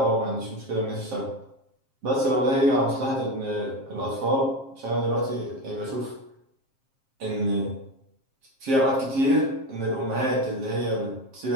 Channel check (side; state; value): left; late; 7.5 ms